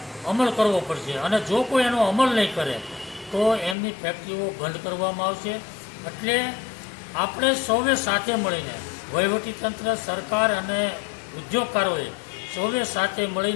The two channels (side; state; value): right; drops out; at 3.8 s